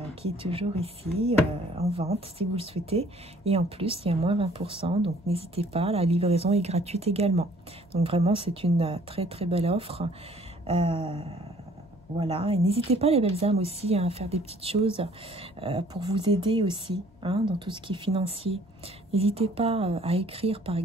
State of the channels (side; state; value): both; normal; correlation 0.57